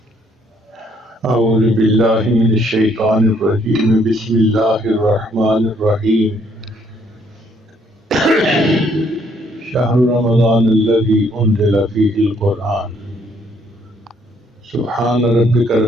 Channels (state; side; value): normal; both; correlation 0.67